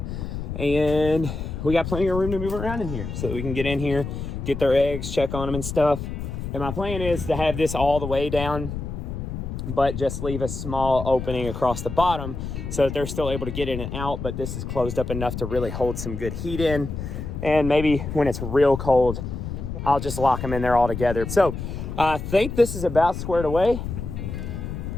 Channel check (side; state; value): left; noise; rumble, 6 dB below the sound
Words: And we got plenty of room to move around in here so that we can get in here, get their eggs, check on them and stuff. And my plan is to have this all the way down, but just leave a small opening across the bottom so that they're still able to get in and out, but this is closed up enough to really hold some good heat in. And maybe when it's real cold, I'll just lock them in there all together. So I think this is about squared away.